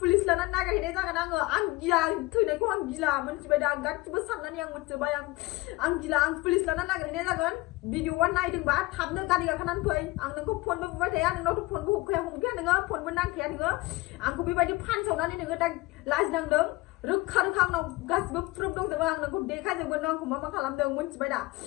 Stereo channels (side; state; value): right; quieter; 21.2 dB